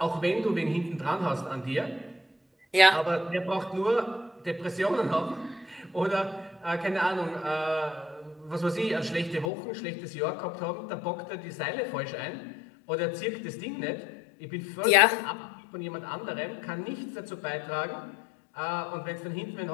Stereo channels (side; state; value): right; drops out; at 9.5 s